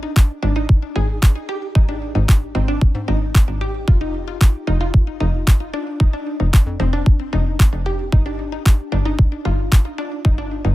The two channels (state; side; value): normal; both; correlation 0.96